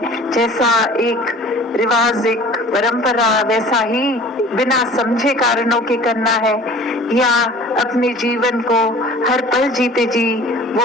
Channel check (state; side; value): normal; both; correlation 0.46